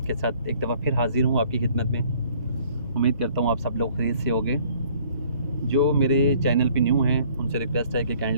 के साथ एक दफ़ा फिर हाज़िर हूँ आपकी खिदमत में। उम्मीद करता हूँ आप सब लोग खैरियत से होंगे। जो मेरे चैनल पे न्यू हैं उनसे रिक्वेस्ट है कि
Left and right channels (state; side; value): inverted; both; correlation -0.58